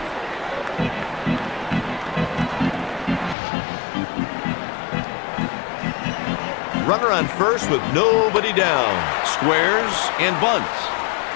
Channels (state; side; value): drops out; right; at 3.4 s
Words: Runner on first with nobody down. Squares and bunts.